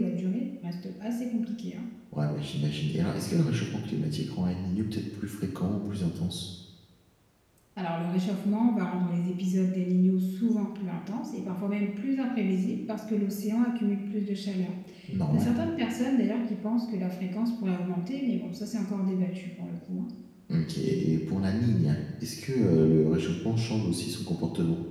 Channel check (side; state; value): both; identical; correlation 1.00